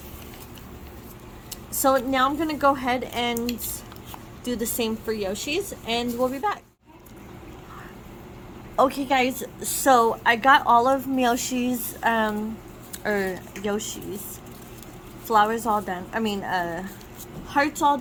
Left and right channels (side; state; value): both; identical; correlation 1.00